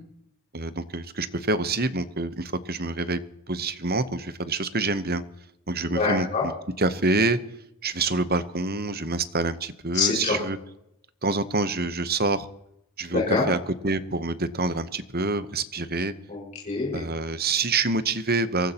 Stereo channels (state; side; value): normal; both; correlation 0.24